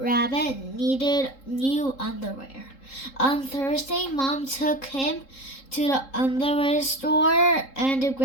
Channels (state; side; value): late; right; 3.7 ms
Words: needed new underwear. On Thursday, Mom took him to the underwear store and